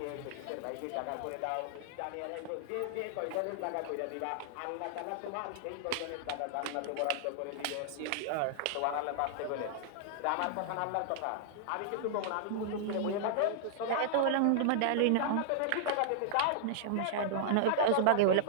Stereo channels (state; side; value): different; both; correlation -0.01